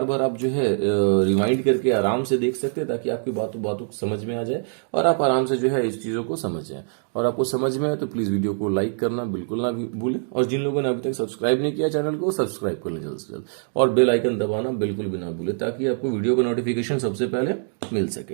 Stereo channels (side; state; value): left; silent; 63 dB below the other